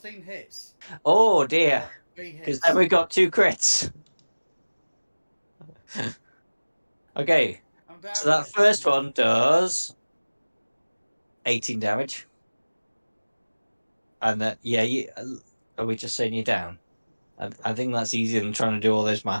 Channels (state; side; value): inverted; both; correlation -1.00